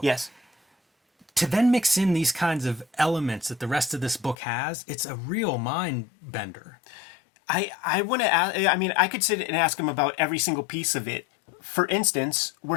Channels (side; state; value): right; drops out; at 4.4 s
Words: Yes. To then mix in these kinds of elements that the rest of this book has, it's a real mind bender. I want to ask, I could sit and ask him about every single piece of it. For instance,